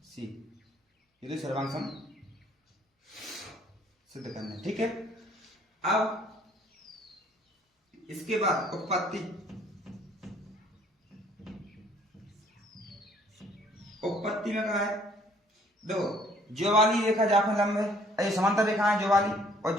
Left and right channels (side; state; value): both; normal; correlation 0.60